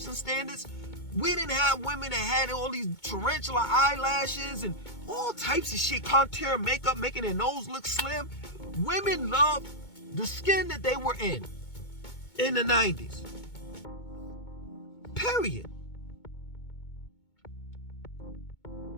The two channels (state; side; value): late; right; 2.2 ms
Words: standards. We didn't have women that had all these tarantula eyelashes and all types of shit, contour makeup, making their nose look slim. Women loved the skin that they were in the 90s. Period.